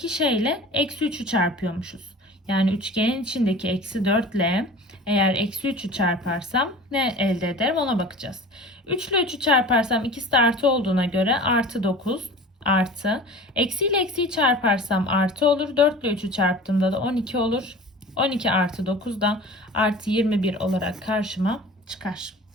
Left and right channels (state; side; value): normal; both; correlation 0.39